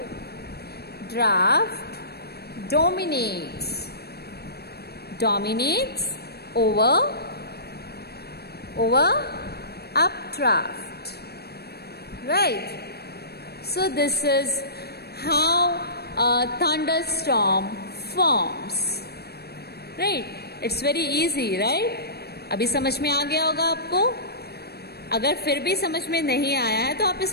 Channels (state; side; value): late; right; 0.47 ms